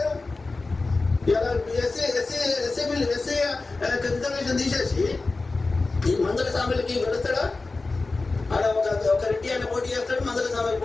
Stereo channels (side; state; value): right; quieter; 3.6 dB